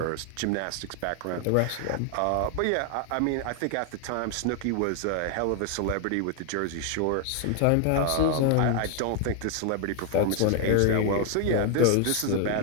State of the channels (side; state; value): both; different; correlation 0.00